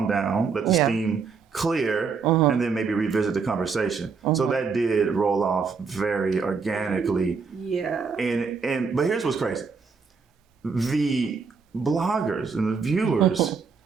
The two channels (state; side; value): quieter; left; 5.3 dB